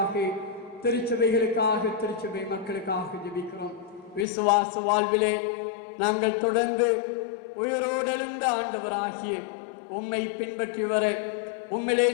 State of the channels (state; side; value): drops out; right; at 4.2 s